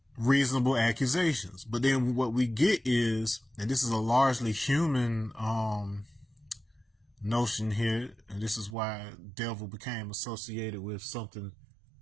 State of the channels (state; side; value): drops out; left; at 8.8 s